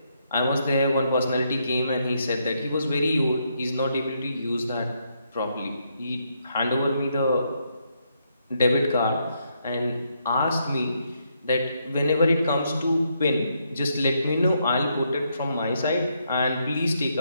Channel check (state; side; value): inverted; both; correlation -0.77